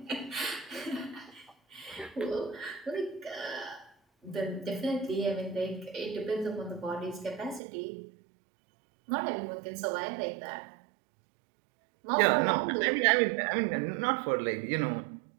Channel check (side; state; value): left; drops out; at 7.6 s